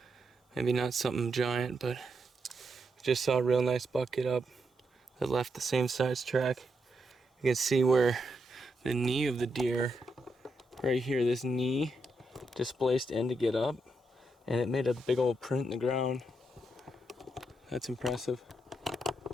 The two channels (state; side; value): normal; both; correlation 0.82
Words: Maybe not something giant, but just saw a real nice buck get up that left the same size track. You can see where the knee of the deer, right here, this knee displaced in to get up, and it made a big old print in the ground. That's impressive.